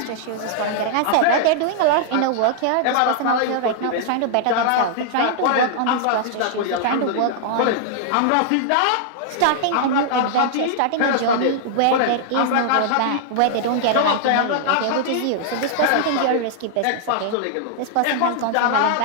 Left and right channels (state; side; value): different; both; correlation -0.01